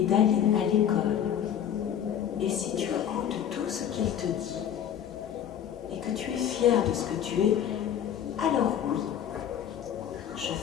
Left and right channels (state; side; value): quieter; right; 9.5 dB